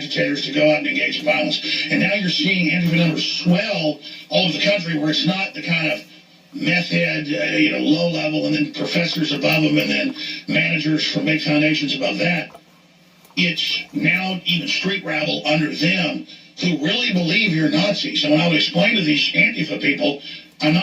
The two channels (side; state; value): both; identical; correlation 1.00